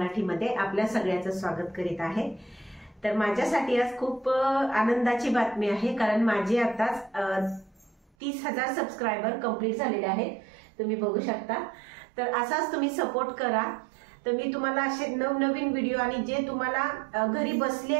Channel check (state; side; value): drops out; left; at 8.1 s